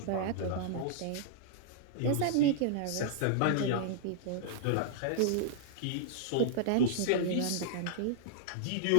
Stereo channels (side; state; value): both; different; correlation -0.01